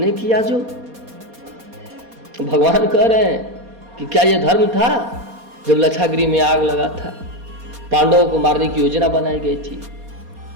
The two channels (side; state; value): left; late; 4.2 ms